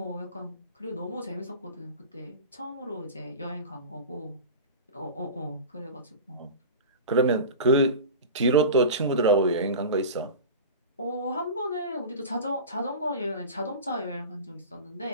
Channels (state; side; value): inverted; both; correlation -0.31